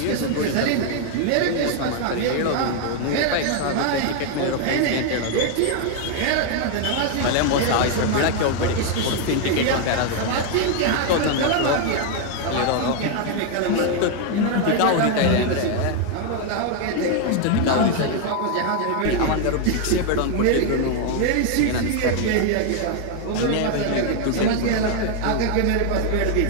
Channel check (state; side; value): different; both; correlation 0.00